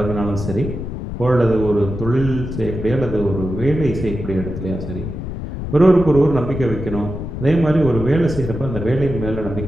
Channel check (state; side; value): noise; left; rumble, 7 dB below the sound